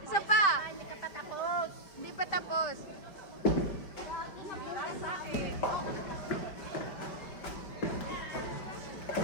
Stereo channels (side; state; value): right; late; 5.1 ms